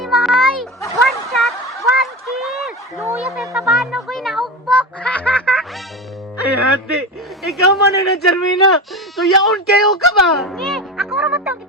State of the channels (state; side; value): normal; both; correlation 0.24